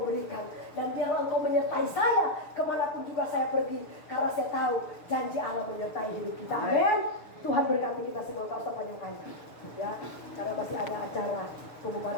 berikan. Dan biarlah Engkau menyertai saya kemanapun juga saya pergi, karena saya tahu janji Allah menyertai hidup kita. Amin. Tuhan berkati kita semua. Tak usah panjang-panjang, ya, karena masih ada acara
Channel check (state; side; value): late; right; 6.6 ms